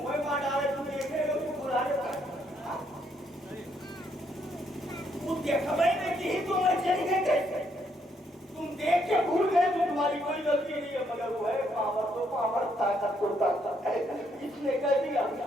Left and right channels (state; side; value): normal; both; correlation 0.73